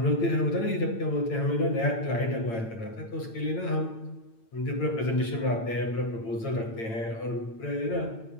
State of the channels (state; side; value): late; right; 8.9 ms